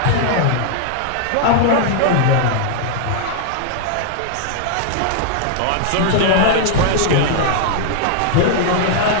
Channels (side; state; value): both; different; correlation -0.01